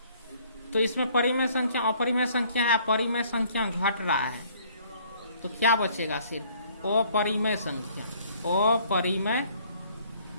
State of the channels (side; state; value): both; inverted; correlation -0.60